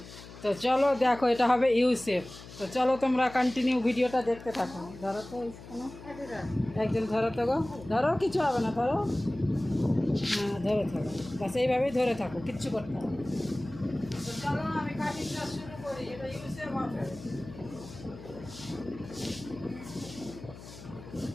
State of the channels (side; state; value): left; noise; hum, 16 dB below the sound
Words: তো চলো দেখো এটা হবে ইউ শেপ। তো চলো তোমরা কন্টিনিউ ভিডিওটা দেখতে থাকো। ধরো তো কোনো একজন ধরো তো গো, ধরো কিছু হবে না, ধরো হ্যাঁ ধরে থাকো, বাস এইভাবেই ধরে থাকো, কিচ্ছু করতে হবে। তো চলো আমি কাটিংটা শুরু করি। এটা ইউ শেপ হবে।